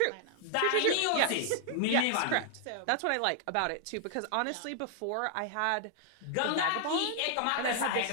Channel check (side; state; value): both; different; correlation -0.01